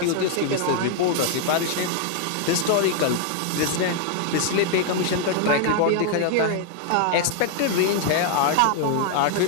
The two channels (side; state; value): both; different; correlation 0.00